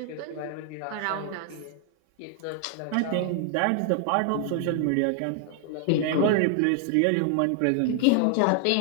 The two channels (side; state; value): both; different; correlation 0.00